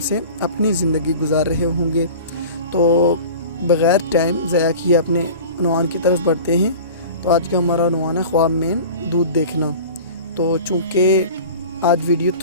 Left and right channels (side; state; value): both; inverted; correlation -0.38